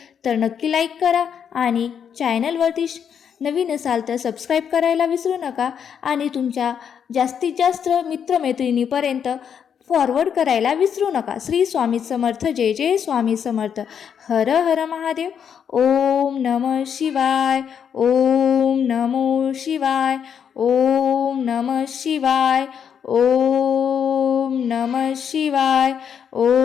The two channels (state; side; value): quieter; right; 7.8 dB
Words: तर नक्की लाईक करा आणि चॅनलवरती नवीन असाल तर सबस्क्राईब करायला विसरू नका. आणि तुमच्या जास्तीत जास्त मित्रमैत्रिणीपर्यंत फॉरवर्ड करायला विसरू नका. श्री स्वामी समर्थ. जय जय स्वामी समर्थ. हर हर महादेव. ओम नमः शिवाय. ओम नमो शिवाय. ओम नमः शिवाय. ओम नमः शिवाय.